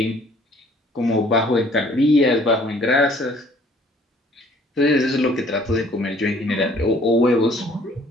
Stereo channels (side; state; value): both; normal; correlation 0.57